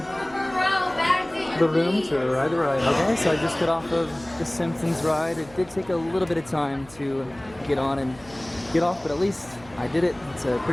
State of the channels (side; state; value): right; noise; hum, 23 dB below the sound